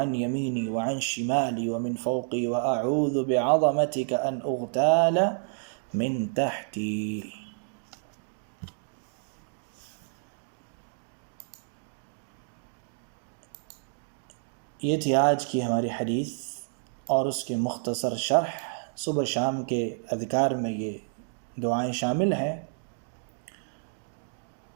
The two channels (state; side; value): silent; left; digital silence